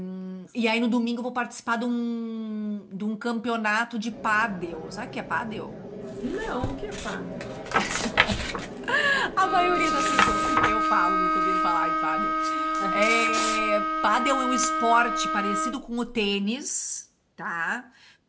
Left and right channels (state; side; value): identical; both; correlation 1.00